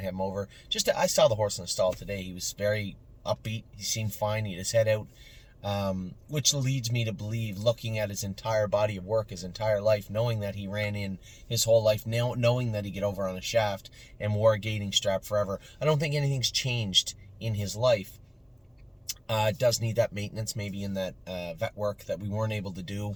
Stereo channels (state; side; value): identical; both; correlation 1.00